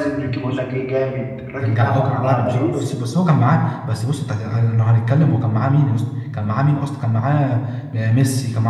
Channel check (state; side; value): identical; both; correlation 1.00